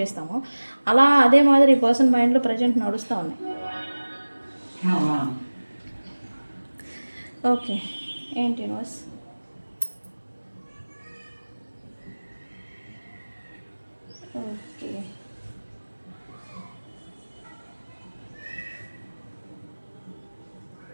అలా అదే మాదిరి ఈ పర్సన్ మైండ్లో ప్రజెంట్ నడుస్తూ ఉన్నాయి. ఓకే, ఏంటి యూనివర్స్? ఓకే,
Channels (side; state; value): both; inverted; correlation -1.00